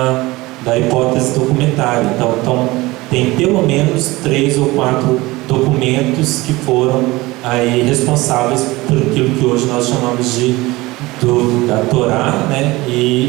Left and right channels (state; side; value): quieter; left; 20.6 dB